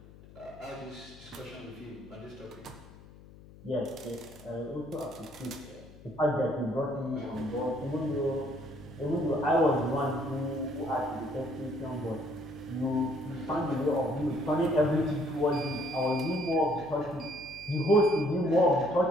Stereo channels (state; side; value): noise; left; hum, 20 dB below the sound